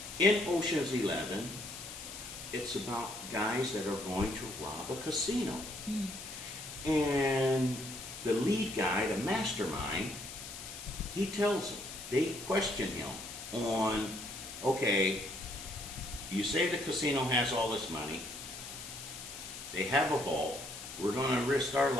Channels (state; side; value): noise; left; hiss, 11 dB below the sound